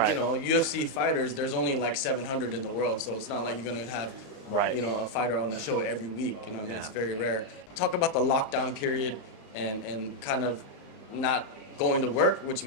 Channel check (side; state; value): right; late; 34 ms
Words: you know, UFC fighters, there's only like 700 in the world, so it's not like you're gonna have you know, a fighter on the show every week. You know what I mean? It's very rare. Talk about the lockdown period and kind of not going to work, which